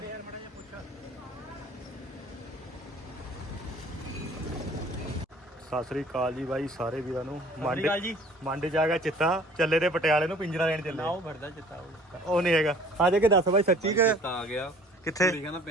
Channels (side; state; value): both; normal; correlation 0.51